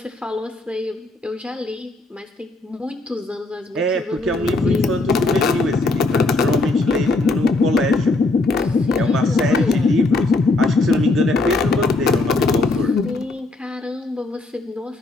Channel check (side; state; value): right; quieter; 3.0 dB